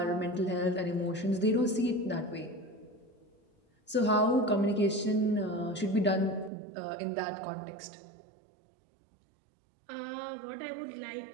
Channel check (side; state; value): left; drops out; at 6.5 s